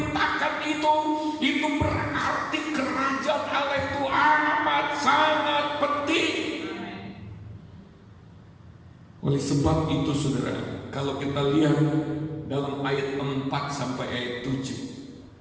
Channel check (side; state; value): both; identical; correlation 1.00